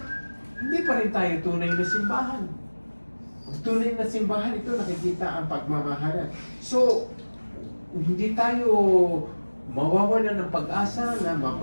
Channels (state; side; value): inverted; both; correlation -1.00